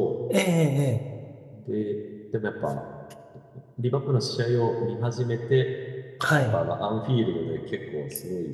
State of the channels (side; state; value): both; identical; correlation 1.00